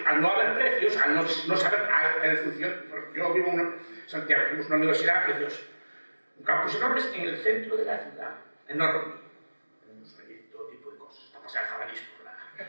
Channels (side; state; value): both; inverted; correlation -1.00